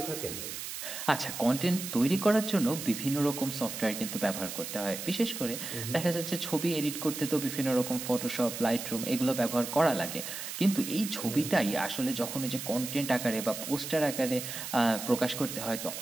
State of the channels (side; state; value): right; noise; hiss, 7 dB below the sound